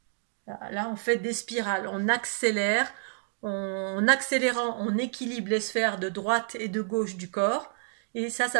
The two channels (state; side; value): silent; left; 59 dB below the other